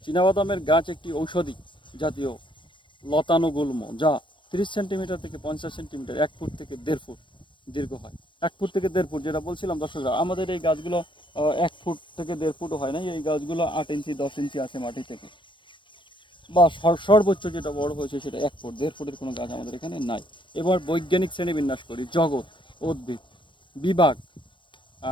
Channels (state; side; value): late; right; 0.24 ms